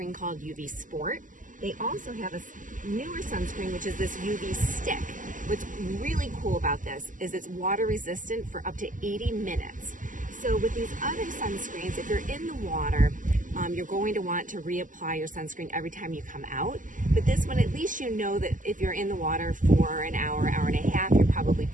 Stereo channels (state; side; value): late; left; 0.38 ms